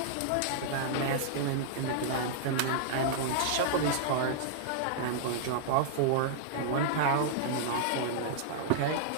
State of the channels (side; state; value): both; different; correlation -0.01